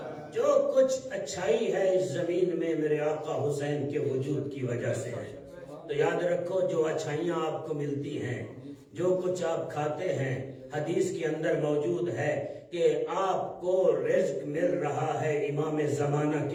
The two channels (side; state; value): both; identical; correlation 1.00